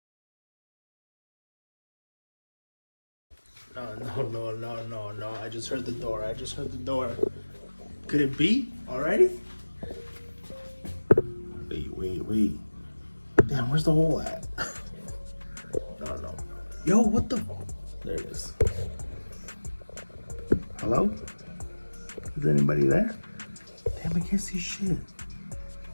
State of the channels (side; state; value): both; inverted; correlation -1.00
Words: No, I just heard the door, Could it be already? Wait. Damn, where's the hole at? No. Yo, what the? There it is. Hello? Is anybody there? Damn, I can't see shit.